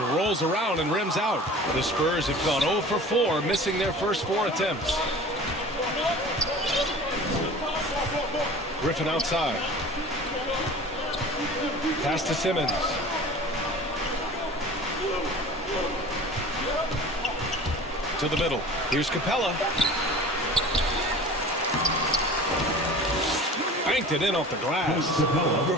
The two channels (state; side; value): normal; both; correlation 0.41